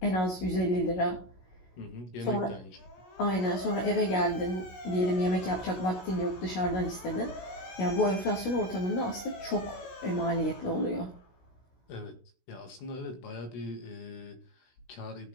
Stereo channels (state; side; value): late; right; 16 ms